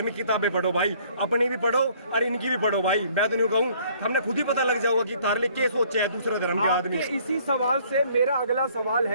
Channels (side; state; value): both; inverted; correlation -0.60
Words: किताबें पढ़ो भाई, अपनी भी पढ़ो और इनकी भी पढ़ो भाई। मैं तो नहीं कहूँ, हमने खुद ही पता लग जाओगा कि तारले क्या सोचे है दूसरे धर्म के आदमी। इसी सवाल से मेरा अगला सवाल